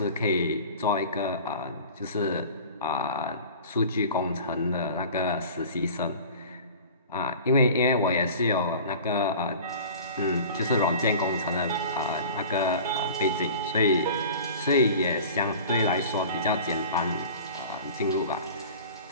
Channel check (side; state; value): both; inverted; correlation -0.40